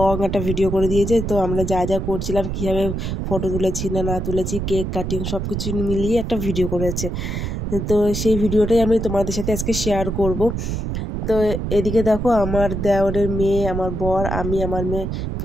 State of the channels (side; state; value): right; noise; rumble, 3 dB below the sound